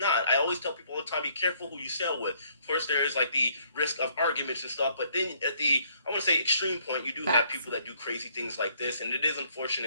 not. I always tell people all the time, be careful who you sail with. Of course, there is like the risk of arguments and stuff, but then at the, I want to say, extreme point, you do have people that do crazy things like this, and it is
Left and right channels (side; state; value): both; inverted; correlation -0.66